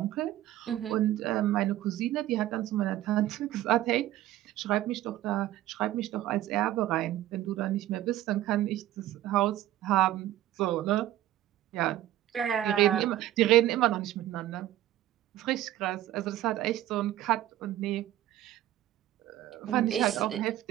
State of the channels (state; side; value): quieter; left; 13.8 dB